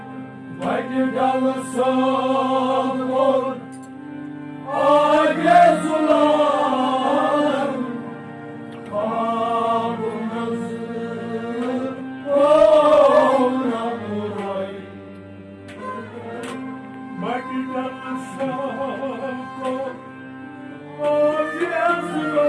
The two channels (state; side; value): identical; both; correlation 1.00